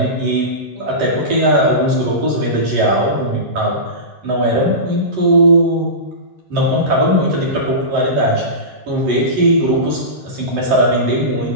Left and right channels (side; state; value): left; late; 11 ms